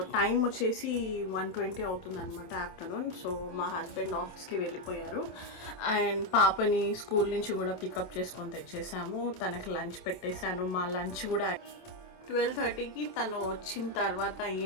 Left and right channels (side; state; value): right; late; 27 ms